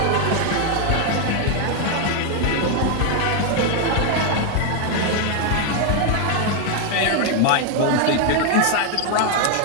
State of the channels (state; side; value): different; both; correlation 0.00